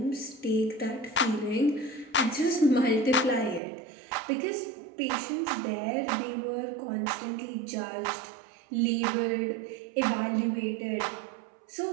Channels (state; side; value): drops out; left; at 3.6 s